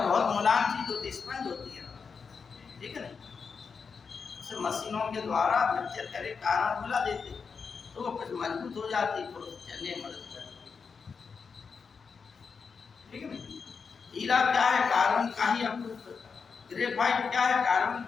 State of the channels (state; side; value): quieter; right; 5.5 dB